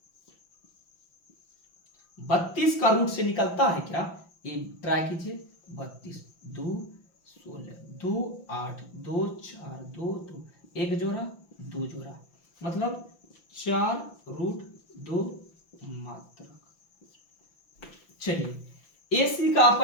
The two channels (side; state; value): right; late; 5.9 ms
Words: 32 का रूट से निकलता है क्या? ये ट्राई कीजिए। 32 2 16 2 8 2 4 2 2 1 जोड़ा 2 जोड़ा, मतलब 4√2 मात्रक। चलिए AC का